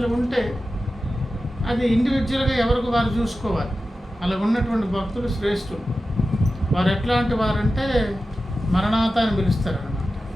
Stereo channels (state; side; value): normal; both; correlation 0.93